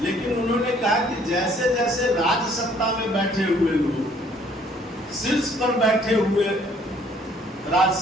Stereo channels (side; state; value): both; normal; correlation 0.61